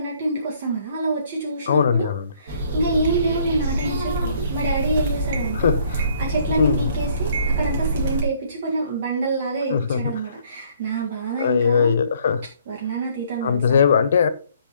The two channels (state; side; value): inverted; both; correlation -0.63